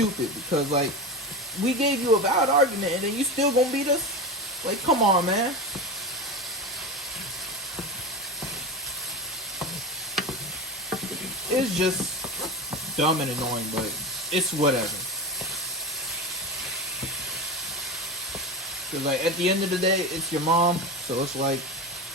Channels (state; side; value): normal; both; correlation 0.23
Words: because like we gave you a valid argument and then you still gonna beat us. Like, come on, man. It's just dumb and annoying, but it's whatever. Cause like at the end of the day, it's your mom, so it's like